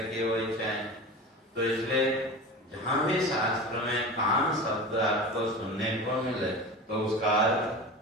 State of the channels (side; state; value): both; normal; correlation 0.31